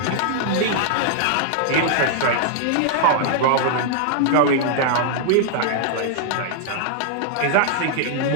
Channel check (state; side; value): different; both; correlation -0.01